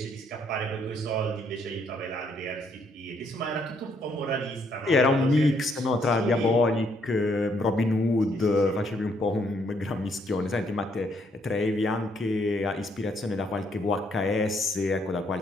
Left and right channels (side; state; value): both; normal; correlation 0.71